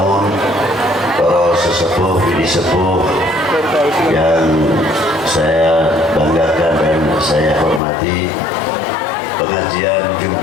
para sesepuh, bini sepuh yang saya banggakan dan saya hormati, pengajian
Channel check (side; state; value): right; drops out; at 7.8 s